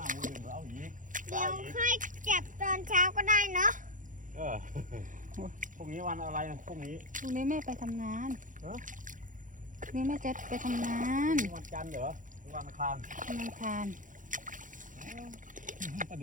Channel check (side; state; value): left; late; 0.38 ms